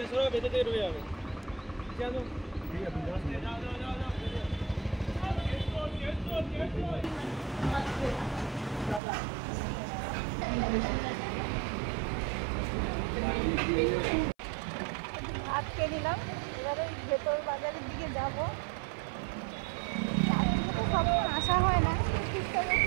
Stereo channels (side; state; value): left; drops out; at 9.0 s